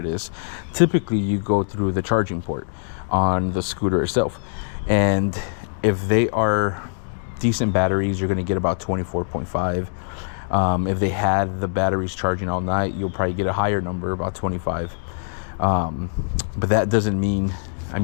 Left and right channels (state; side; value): silent; right; digital silence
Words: is, typically you go through the charging port on the scooter itself. And if they are decent batteries, you're going to get about 24.5. If they had the batteries charging all night, you'll probably get a higher number, about 25. But that doesn't mean,